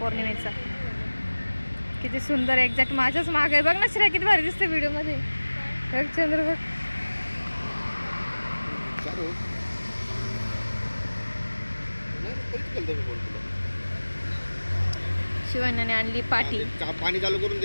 किती सुंदर, एक्झॅक्ट माझ्याच माग आहे. बघ ना श्रेया किती भारी दिसते व्हिडिओमध्ये. बघ चंद्र बघ. शिवान्याने आणली पाटी. पाणी चालू करून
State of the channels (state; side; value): inverted; both; correlation -1.00